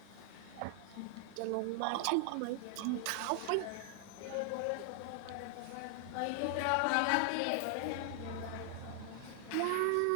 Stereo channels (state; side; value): different; both; correlation 0.00